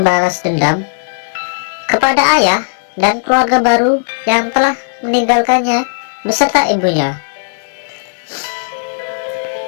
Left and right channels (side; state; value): right; silent; digital silence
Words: dendam kepada ayah dan keluarga baru yang telah meninggalkannya beserta ibunya.